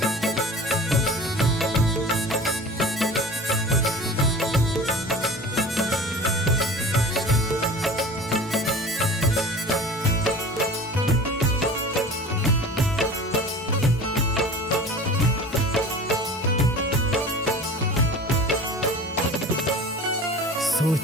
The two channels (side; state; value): both; normal; correlation 0.39